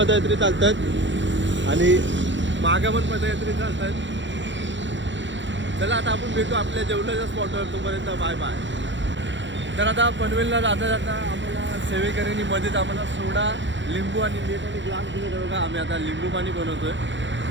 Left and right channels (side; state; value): left; late; 0.54 ms